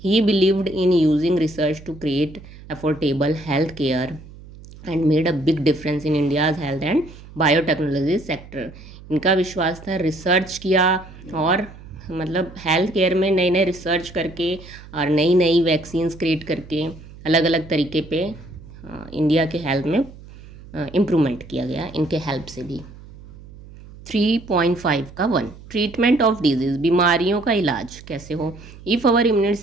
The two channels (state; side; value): noise; right; hum, 19 dB below the sound